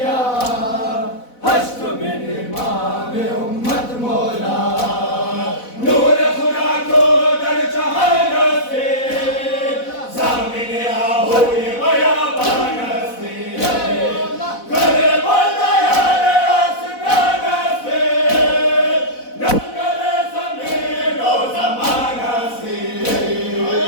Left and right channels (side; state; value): right; late; 4.0 ms